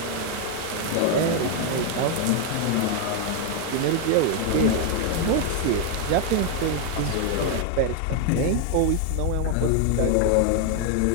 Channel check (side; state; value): both; different; correlation 0.01